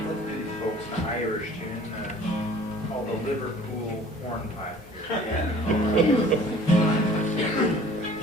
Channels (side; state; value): both; normal; correlation 0.50